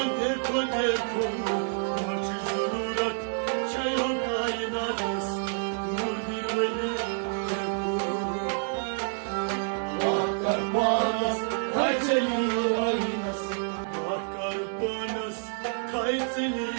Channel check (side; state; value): left; silent; 59 dB below the other